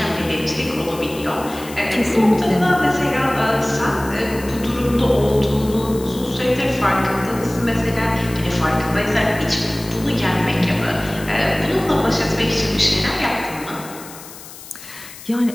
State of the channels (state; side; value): noise; left; hiss, 16 dB below the sound